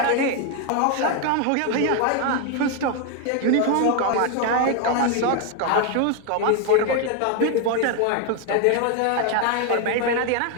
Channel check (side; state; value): both; different; correlation 0.01